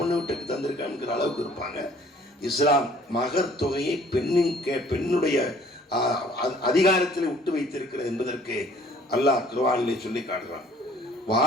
வீட்டுக்கு தந்திருக்காங்கிற அளவுக்கு இருப்பாங்க. இஸ்லாம் மகர் தொகையை பெண்ணுடைய அதிகாரத்தில் விட்டு வைத்திருக்கிறது என்பதற்கு அல்லாஹ் குர்ஆனிலே சொல்லி காட்டுறான்.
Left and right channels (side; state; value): both; normal; correlation 0.56